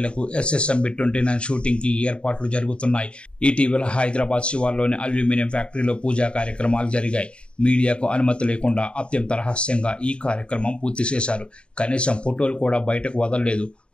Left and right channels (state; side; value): late; right; 0.055 ms